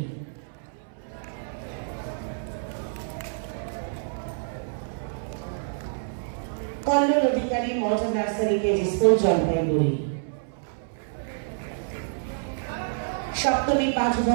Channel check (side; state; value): left; silent; 60 dB below the other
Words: कल्लोल अधिकारी modern नर्सारी KG school Jalpaiguri सप्तमी 5